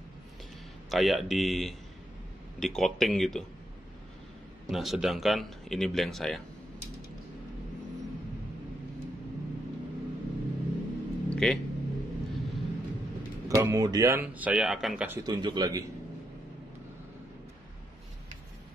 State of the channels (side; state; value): both; normal; correlation 0.81